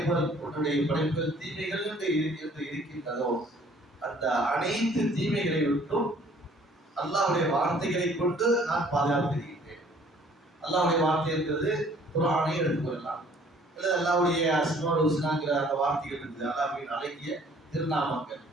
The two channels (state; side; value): normal; both; correlation 0.57